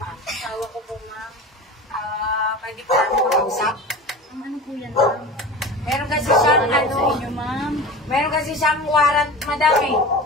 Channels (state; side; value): normal; both; correlation 0.33